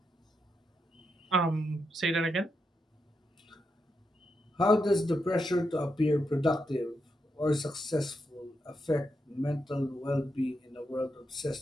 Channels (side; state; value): both; normal; correlation 0.84